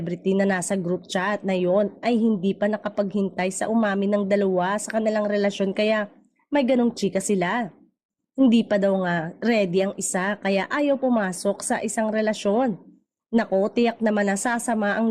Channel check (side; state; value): both; identical; correlation 1.00